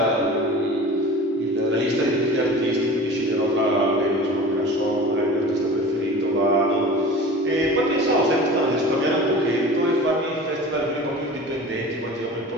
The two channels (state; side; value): normal; both; correlation 0.38